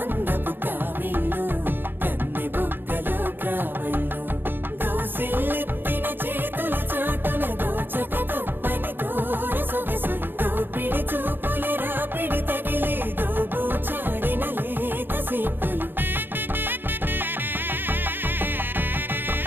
కావిల్లు కన్నె బొక్కలో కావళ్ళు దోసిల్లెత్తిన చేతుల చాటున దోచక తప్పని దూర సొగసులు దోపిడి చూపుల రాపిడి తగిలి దోబూచాడిన లేత సీపులు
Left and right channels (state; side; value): late; left; 0.097 ms